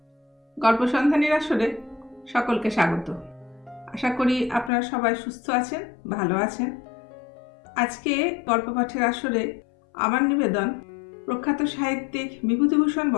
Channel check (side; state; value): right; drops out; at 4.7 s